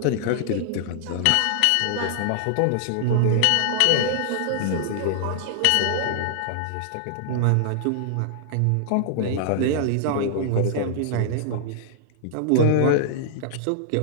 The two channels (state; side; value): different; both; correlation -0.01